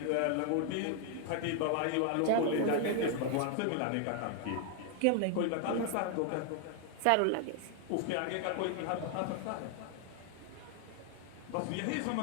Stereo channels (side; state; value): both; different; correlation 0.00